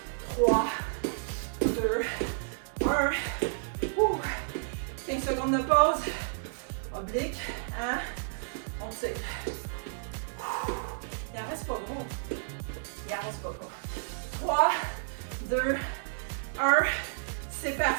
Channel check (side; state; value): left; silent; digital silence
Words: 3, 2, 1. 15 secondes de pause. Oblique, hein? On tire. Il en reste pas gros. Il en reste pas gros. 3, 2, 1. C'est